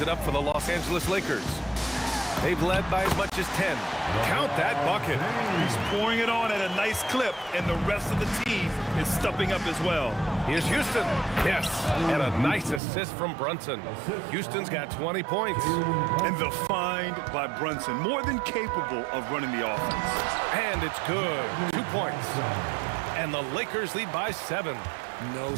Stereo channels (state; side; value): drops out; left; at 12.8 s